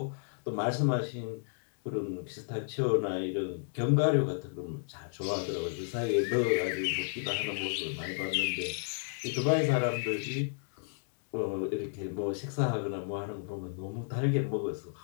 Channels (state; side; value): silent; right; digital silence